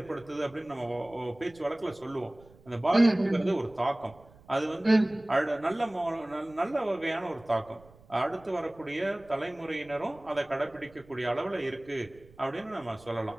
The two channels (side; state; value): right; noise; rumble, 25 dB below the sound